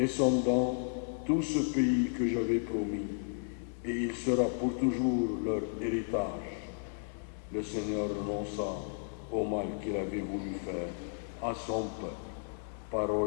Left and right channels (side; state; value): right; silent; digital silence